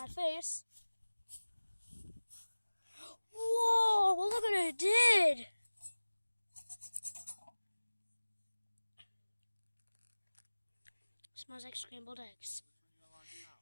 face. Whoa, well, look what it did. Smells like scrambled eggs.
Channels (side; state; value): both; inverted; correlation -1.00